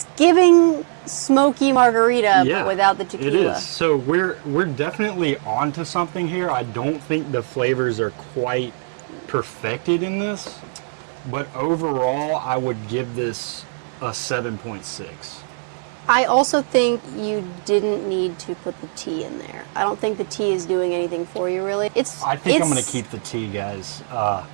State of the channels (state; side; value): silent; left; digital silence